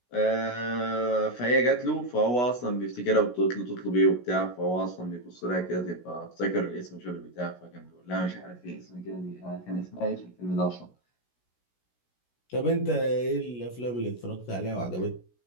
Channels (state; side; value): late; right; 16 ms